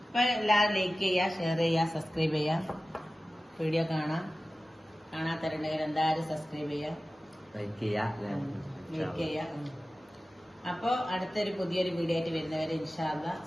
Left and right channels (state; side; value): normal; both; correlation 0.96